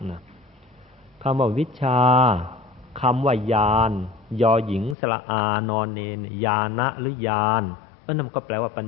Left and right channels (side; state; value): right; drops out; at 5.0 s